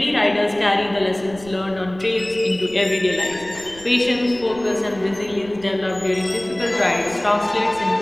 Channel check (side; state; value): right; noise; rumble, 20 dB below the sound